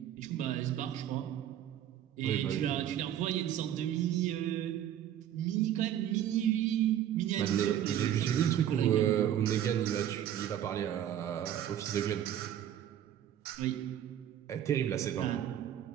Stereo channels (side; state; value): left; quieter; 10.8 dB